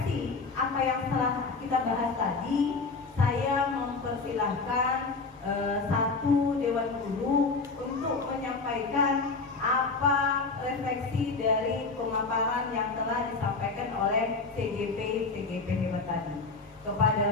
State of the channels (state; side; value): quieter; right; 4.1 dB